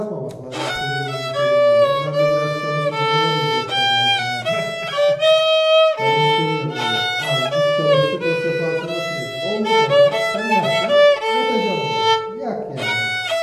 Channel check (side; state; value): both; identical; correlation 1.00